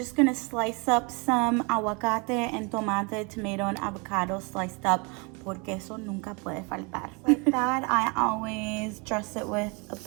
going to slice up some aguacate and tomate, tomato, and avocado sliced up, porque eso nunca puede faltar. Like that, I always dress it with a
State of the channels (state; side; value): quieter; left; 30.8 dB